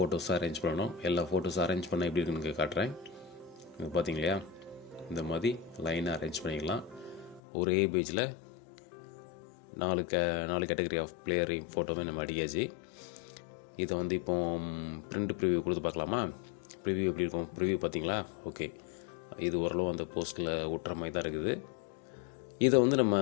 அரேஞ்ச் பண்ணணும். எல்லா ஃபோட்டோஸும் அரேஞ்ச் பண்ணால் எப்படி இருக்குன்னு காட்டுறேன். இது பார்த்தீங்க இல்லையா, இந்த மாதிரி லைனாக அரேஞ்ச் பண்ணிக்கலாம். ஒரே பேஜில் 4 கேட்டகரி ஆஃப் பிளேயரையும் ஃபோட்டோவே நம்ம அடிக்காச்சு. இதை வந்து இப்போ பிரிண்ட் ப்ரிவியூ கொடுத்து பார்க்கலாமா? ப்ரிவ்யூ எப்படி இருக்கும், ப்ரிவ்யூ பார்த்தீங்களா? ஓகே, இது ஓரளவு அந்த போஸ்ட்டில் ஒட்டுற மாதிரி தான் இருக்குது. இதை வந்து நம்ம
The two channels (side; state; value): right; drops out; at 7.4 s